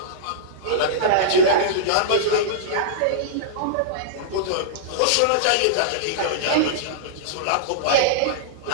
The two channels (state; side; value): different; both; correlation -0.03